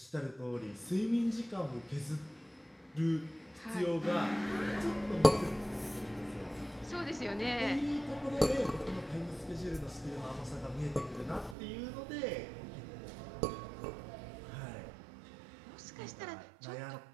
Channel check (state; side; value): drops out; left; at 11.6 s